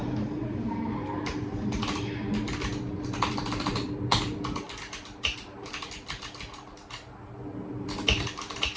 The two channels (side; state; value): both; identical; correlation 1.00